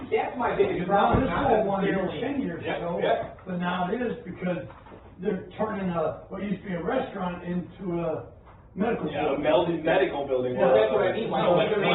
That's my biggest Now, problem. this Not whole one here necessarily- 10 years ago, yeah. but now it is because they're turning what used to be a restaurant into a medical Yeah, a building. melded medical building. Well, that's what I mean, like, So, like, like,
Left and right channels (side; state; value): both; identical; correlation 1.00